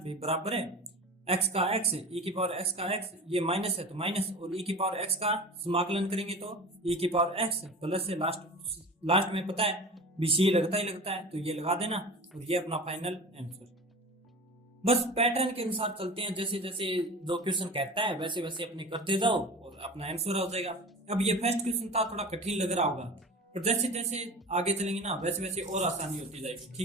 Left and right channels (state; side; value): normal; both; correlation 0.35